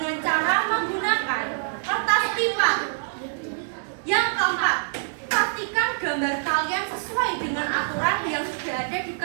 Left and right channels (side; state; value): left; silent; digital silence